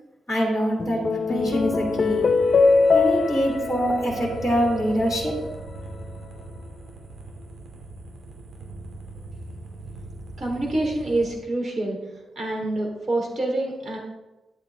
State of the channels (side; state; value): both; normal; correlation 0.88